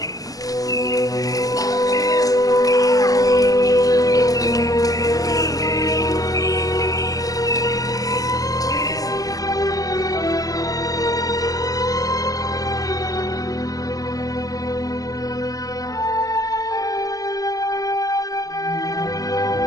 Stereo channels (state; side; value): late; right; 0.17 ms